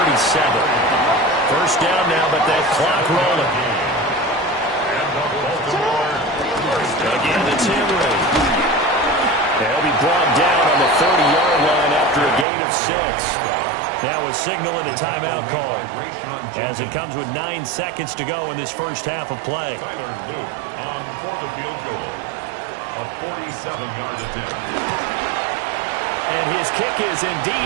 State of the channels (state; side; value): drops out; left; at 12.5 s